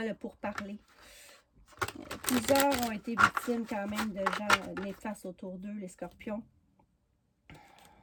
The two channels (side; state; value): both; identical; correlation 1.00